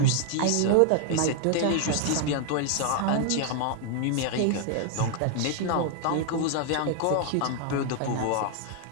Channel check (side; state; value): both; different; correlation 0.00